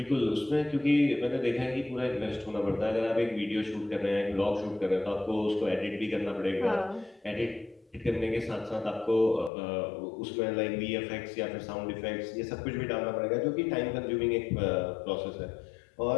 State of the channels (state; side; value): drops out; right; at 9.5 s